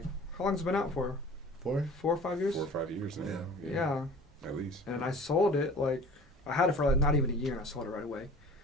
How long's it been out for? 4? 4 or 5 years. 4 or 5 years now. Yeah. At least. And I sold it like I had it for like not even a year, and I sold it right away.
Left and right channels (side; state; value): both; normal; correlation 0.43